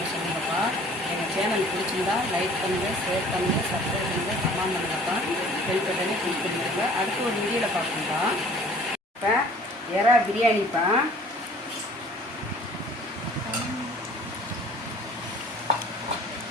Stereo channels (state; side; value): normal; both; correlation 0.51